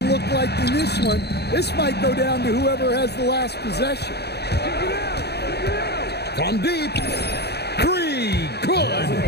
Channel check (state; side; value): late; right; 0.48 ms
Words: look like in this one. This might go down to whoever has the last possession. From deep. 3. Good.